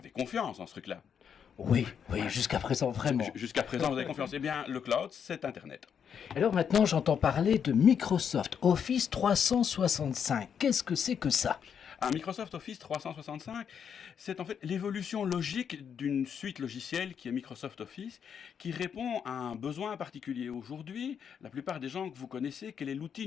confiance en ce truc-là. Oui, jusqu'à présent, vraiment. Jusqu'à présent, vous avez confiance. Eh bien, le cloud, c'est Internet. Alors maintenant, j'entends parler de Microsoft Office 365. Qu'est-ce que c'est que ça? Un Microsoft Office 365, c'est en fait l'évolution logique d'une suite logicielle qui est Microsoft Office, qui répond à un besoin particulier. Aujourd'hui, la plupart des gens que vous connaissez, quel est l'outil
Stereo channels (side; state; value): right; quieter; 7.6 dB